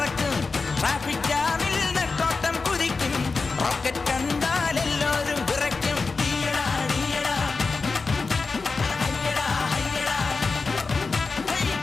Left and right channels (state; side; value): quieter; right; 4.2 dB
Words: ട്രാഫിക് ജാമിൽ നെട്ടോട്ടം കുതിക്കും, റോക്കറ്റ് കണ്ടാൽ എല്ലാവരും വിറയ്ക്കും.